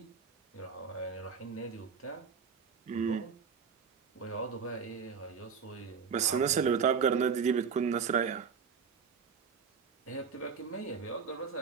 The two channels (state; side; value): quieter; left; 6.2 dB